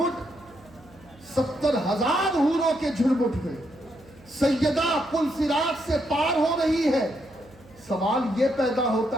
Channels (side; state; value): right; noise; hum, 25 dB below the sound